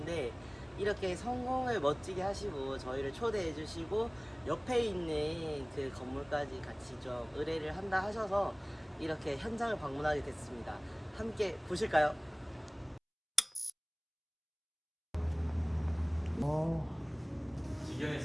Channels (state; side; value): identical; both; correlation 1.00